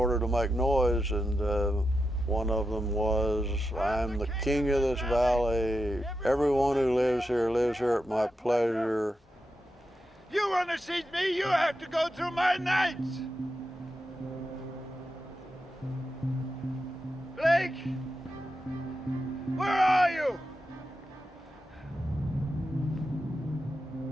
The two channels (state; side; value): normal; both; correlation 0.88